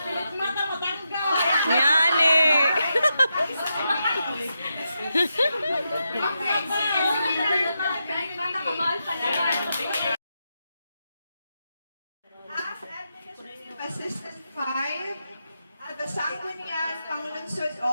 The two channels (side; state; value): both; inverted; correlation -0.85